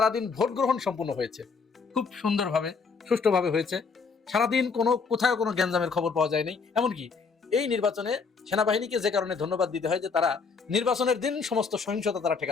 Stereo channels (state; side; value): quieter; right; 5.1 dB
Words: ভোট গ্রহণ সম্পন্ন হয়েছে, খুব সুন্দরভাবে, সুষ্ঠুভাবে হয়েছে। সারাদিন কোথাও কোনো গ্যাঞ্জামের খবর পাওয়া যায়নি। এমনকি এই নির্বাচনে সেনাবাহিনীকে যে কারণে ধন্যবাদ দিতে হয় যে তারা নির্বাচনের দিন সমস্ত সহিংসতা তারা